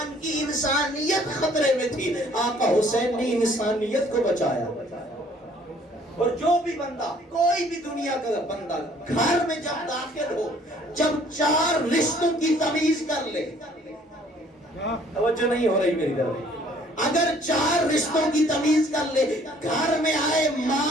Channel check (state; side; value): normal; both; correlation 0.59